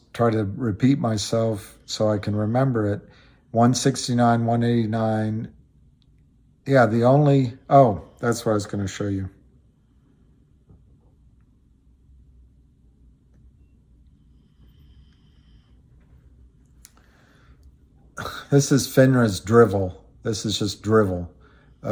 try to repeat myself so I can remember it. 169, 189, Yeah, the only, oh, that's what I was going to show you. This is FINRA's drivel. This is just drivel.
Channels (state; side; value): identical; both; correlation 1.00